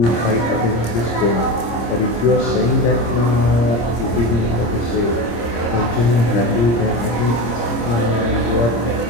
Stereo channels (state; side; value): late; right; 26 ms